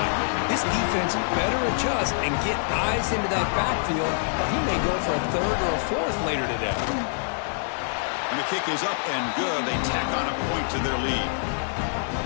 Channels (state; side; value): silent; right; digital silence